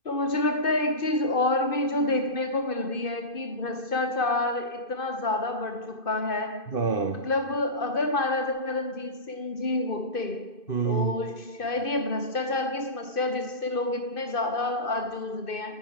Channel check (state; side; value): late; right; 2.5 ms